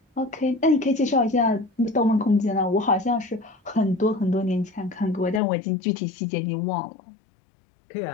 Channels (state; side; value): drops out; right; at 5.4 s